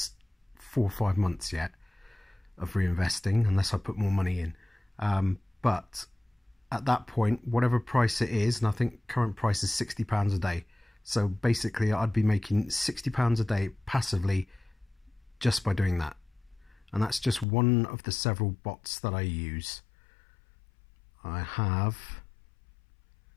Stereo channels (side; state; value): right; drops out; at 17.4 s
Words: 4 or 5 months yet of reinvesting, unless I put more money in. But at that point, whatever price it is, and I think current price is £60 a day. So basically, I'd be making £60 a day passively just by doing that. And that's just one of the several bots that I use. I have